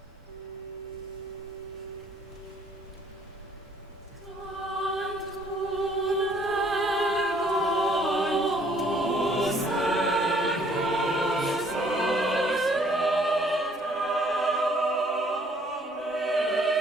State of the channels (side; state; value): both; normal; correlation 0.62